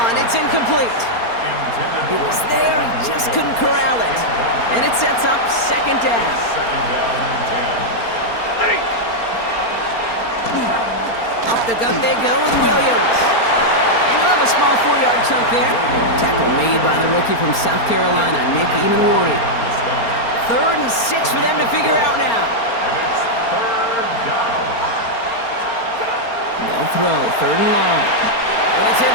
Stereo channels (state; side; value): late; right; 4.3 ms